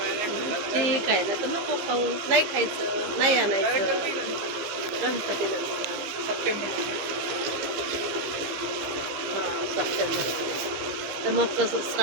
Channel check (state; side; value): late; left; 15 ms